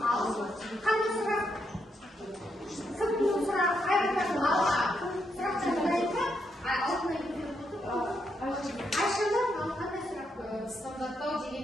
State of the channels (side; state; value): both; normal; correlation 0.79